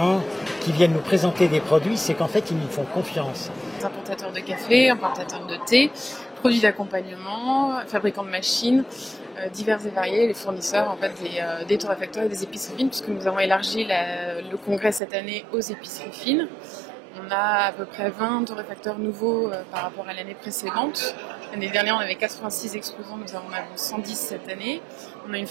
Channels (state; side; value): drops out; left; at 15.0 s